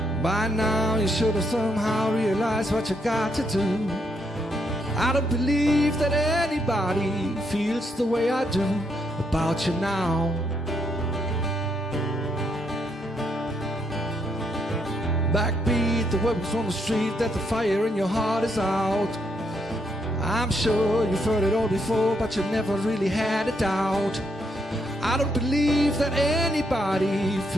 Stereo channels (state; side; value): normal; both; correlation 0.76